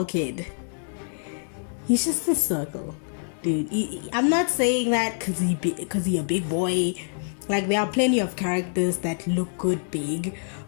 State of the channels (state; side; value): silent; right; digital silence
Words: he's just a circle, dude. I'm not saying that because he a big boy. Like, there are plenty of characters that look good big,